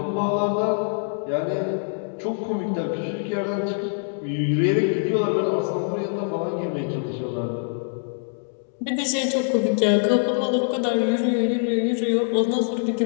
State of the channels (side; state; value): right; silent; 63 dB below the other